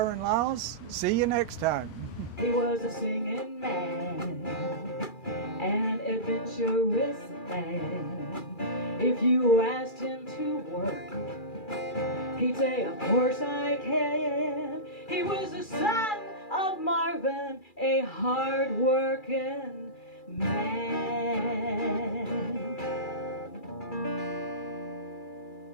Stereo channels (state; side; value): late; right; 2.4 ms